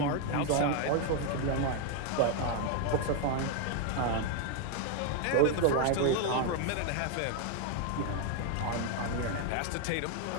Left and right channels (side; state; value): both; different; correlation 0.01